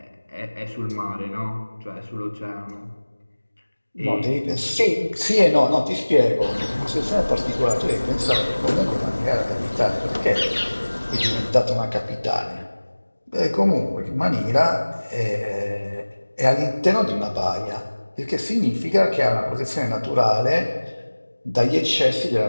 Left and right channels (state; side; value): inverted; both; correlation -1.00